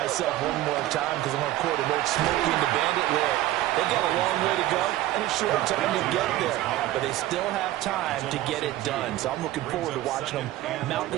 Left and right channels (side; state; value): left; quieter; 15.2 dB